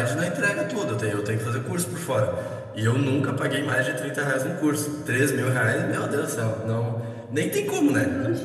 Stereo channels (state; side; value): identical; both; correlation 1.00